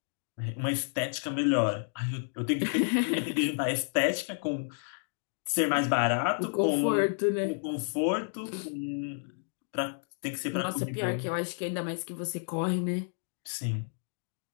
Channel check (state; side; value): silent; right; digital silence